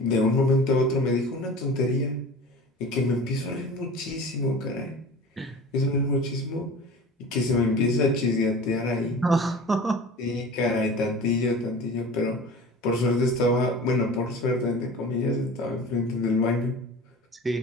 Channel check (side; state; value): both; normal; correlation 0.38